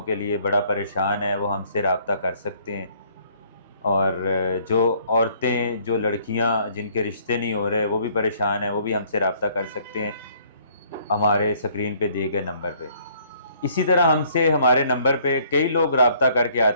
کے لیے بڑا پریشان ہے، وہ ہم سے رابطہ کر سکتے ہیں۔ اور جو عورتیں جو لڑکیاں جن کے رشتے نہیں ہو رہے وہ بھی پریشان ہیں، وہ بھی ہم سے رابطہ کر سکتے ہیں ہمارے اسکرین پہ دیے گئے نمبر پہ۔ اسی طرح ہم سے ہمارے نمبر پہ کئی لوگ رابطہ کر کے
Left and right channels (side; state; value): both; inverted; correlation -0.62